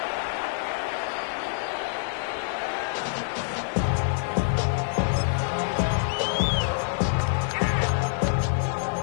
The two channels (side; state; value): right; silent; 58 dB below the other